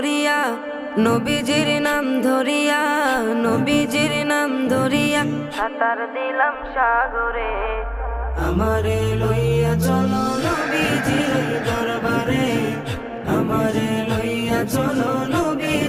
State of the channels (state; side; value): identical; both; correlation 1.00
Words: নবীজির নাম ধরিয়া, নবীজির নাম ধরিয়া সাঁতার দিলাম সাগরে। আমারে লইয়া চলো নবীজির দরবারে, আমারে লইয়া চলো